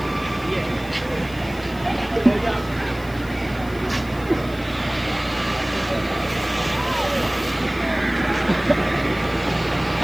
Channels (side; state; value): left; noise; hiss, 21 dB below the sound